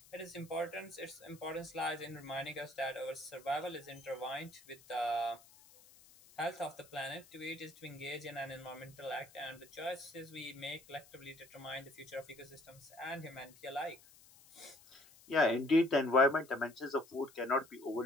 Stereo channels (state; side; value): noise; left; hiss, 23 dB below the sound